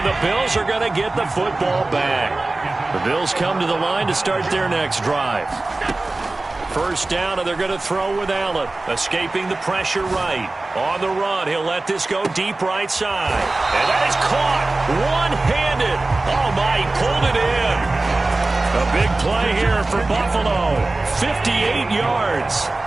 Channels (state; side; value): quieter; left; 3.1 dB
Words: the Bills are going to get the football back. The Bills come to the line to start their next drive. First down, and they're going to throw with Allen. Escaping the pressure right. On the run, he'll let this go deep right side. And that is caught one-handed. Oh, my, he pulled it in. A big play here for Buffalo. 58 yards.